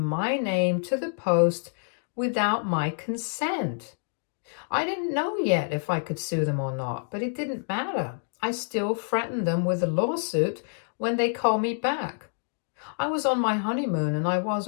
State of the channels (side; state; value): right; silent; 58 dB below the other